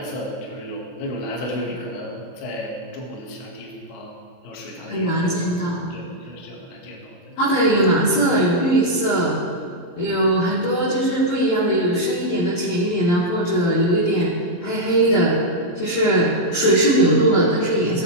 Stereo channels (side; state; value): right; late; 23 ms